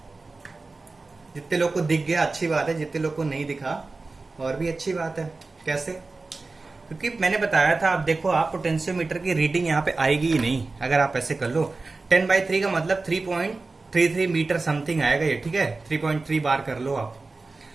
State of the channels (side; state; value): left; quieter; 3.7 dB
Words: जितने लोग को दिख गया अच्छी बात है, जितने लोग को नहीं दिखा और भी अच्छी बात है। कैसे? क्योंकि मैंने बताया था, आप देखो, आप पोटेंशियोमीटर की रीडिंग यहाँ पे आएगी ही नहीं अगर आप ऐसे कर लो। 10 बाई 3 का मतलब 3.33 मीटर समथिंग आएगा ये, ठीक है। 3.3 बार कर लो आप।